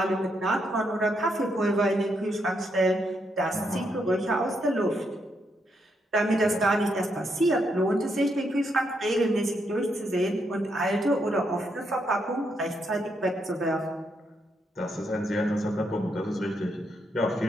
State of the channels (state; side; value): normal; both; correlation 0.78